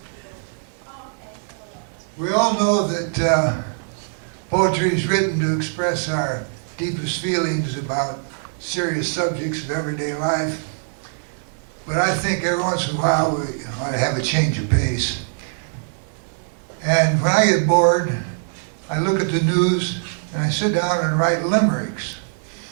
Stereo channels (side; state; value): left; silent; 64 dB below the other